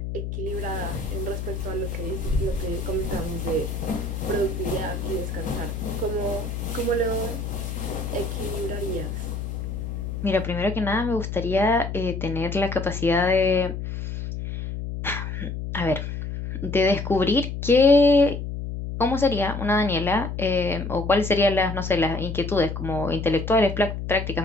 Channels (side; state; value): left; noise; hum, 5 dB below the sound